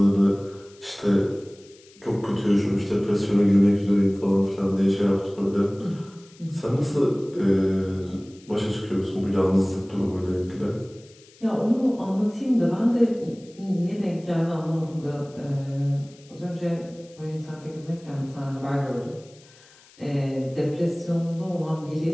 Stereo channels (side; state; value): left; noise; hiss, 26 dB below the sound